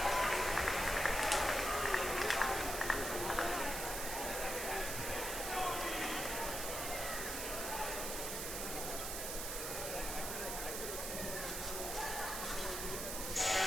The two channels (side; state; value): right; noise; hiss, 3 dB below the sound